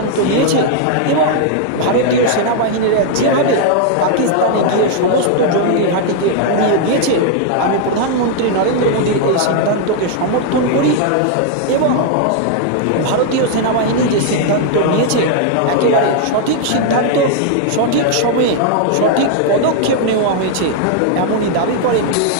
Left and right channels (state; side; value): different; both; correlation 0.00